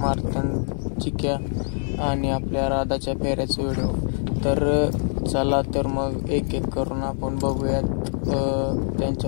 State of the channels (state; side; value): silent; right; digital silence